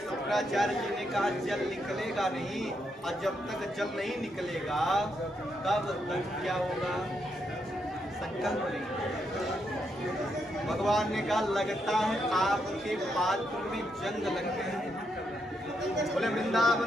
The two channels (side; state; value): both; normal; correlation 0.80